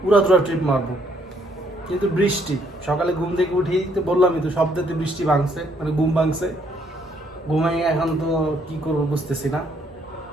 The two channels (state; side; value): normal; both; correlation 0.69